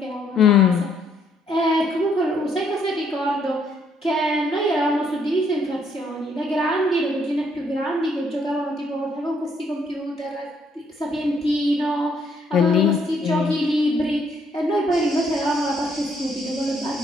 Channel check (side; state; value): both; normal; correlation 0.69